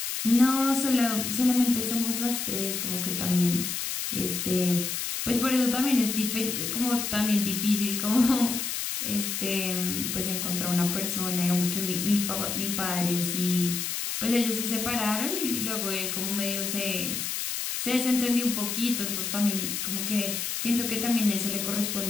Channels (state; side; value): noise; left; hiss, 3 dB below the sound